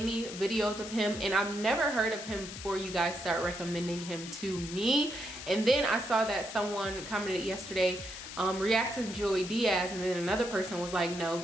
videos of him and I've never heard of him before you guys start recommending him to me. And then I saw that someone commented yesterday, react to Joey Diaz, and then another person was like, no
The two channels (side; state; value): left; noise; hiss, 11 dB below the sound